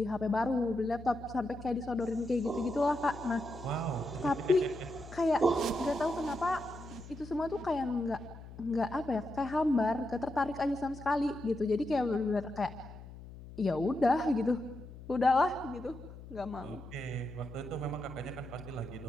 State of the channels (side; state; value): left; noise; hum, 15 dB below the sound